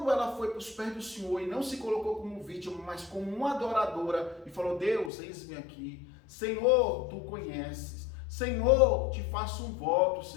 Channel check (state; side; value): drops out; right; at 5.1 s